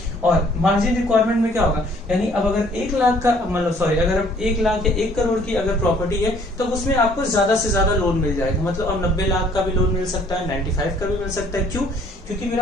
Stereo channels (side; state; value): both; normal; correlation 0.59